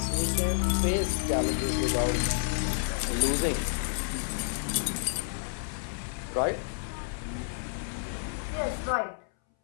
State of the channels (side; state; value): right; silent; 58 dB below the other